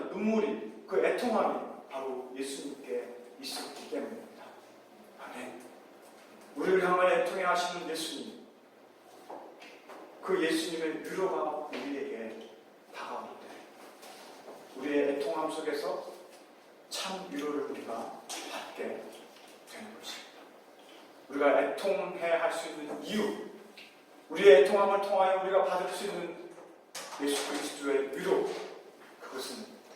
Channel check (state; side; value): identical; both; correlation 1.00